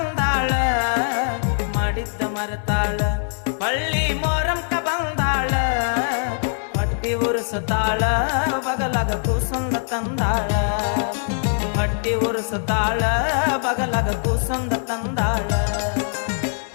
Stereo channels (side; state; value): right; silent; digital silence